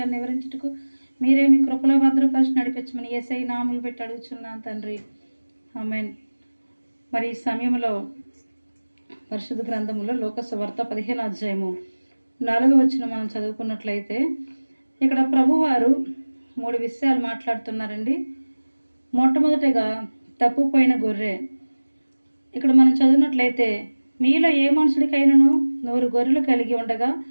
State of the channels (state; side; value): inverted; both; correlation -1.00